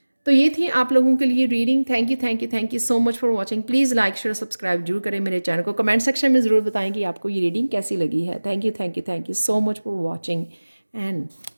तो ये थी आप लोगों के लिए reading. Thank you so much for watching. Please like share subscribe जरूर करें मेरे चैनल को। कमेंट सेक्शन में ज़रूर बताएं कि आपको ये रीडिंग कैसी लगी है। Thank you so much for watching and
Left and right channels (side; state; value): both; inverted; correlation -1.00